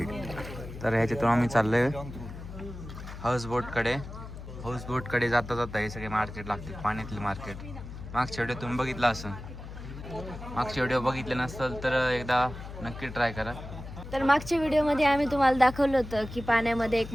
तर ह्याच्यातून आम्ही चाललोय हाऊसबोटकडे. हाऊसबोटकडे जाता जाता हे सगळे मार्केट लागते, पाण्यातले मार्केट. मागच्या व्हिडिओ तुम्ही बघितला असेल, मागच्या व्हिडिओ बघितले नसेल तर एकदा नक्की ट्राय करा. तर मागच्या व्हिडिओमध्ये आम्ही तुम्हाला दाखवलं होतं की पाण्यामध्ये एक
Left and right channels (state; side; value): noise; left; hum, 11 dB below the sound